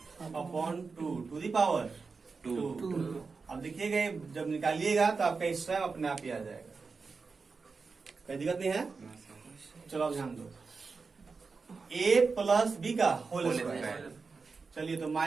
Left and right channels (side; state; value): left; quieter; 4.6 dB